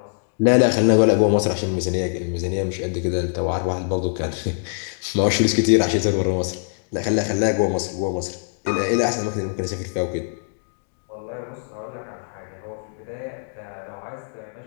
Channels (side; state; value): right; silent; digital silence